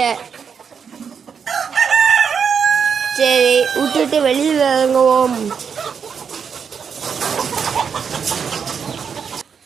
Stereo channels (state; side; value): quieter; left; 6.7 dB